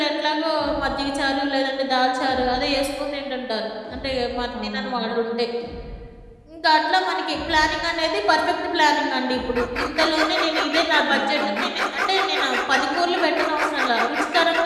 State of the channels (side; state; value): both; identical; correlation 1.00